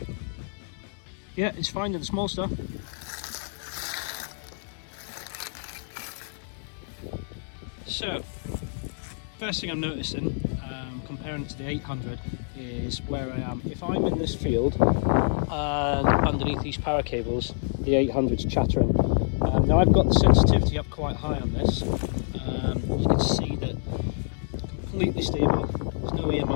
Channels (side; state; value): right; silent; digital silence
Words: Yeah, it's finding the small stuff. So, first thing I'm noticing, comparing it to the 800, is where I am. If I'm in this field and underneath these power cables, the 800's chattering. Now I've got the sensitivity up quite high on this. You can see that completely stable. There's no